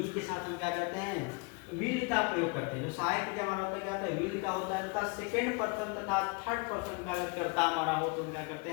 के साथ हम क्या करते हैं, विल का प्रयोग करते हैं। जो सहायक क्रिया हमारा होता है क्या होता है, विल का होता है तथा सेकेंड पर्सन तथा थर्ड पर्सन का अगर कर्ता हमारा हो तो हम क्या करते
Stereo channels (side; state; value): right; quieter; 30.8 dB